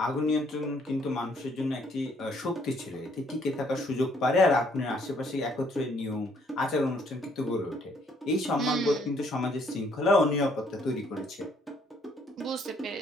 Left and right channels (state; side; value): normal; both; correlation 0.66